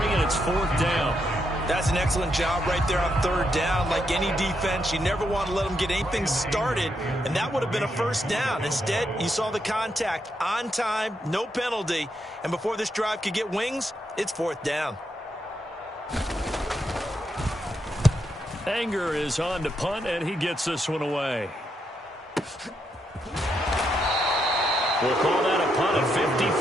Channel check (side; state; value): both; normal; correlation 0.80